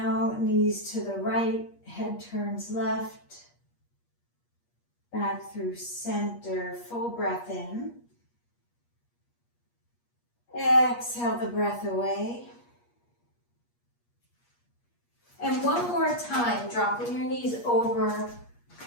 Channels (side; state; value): right; late; 8.4 ms